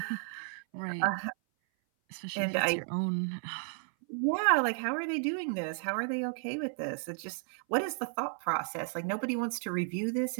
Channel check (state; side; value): silent; left; 56 dB below the other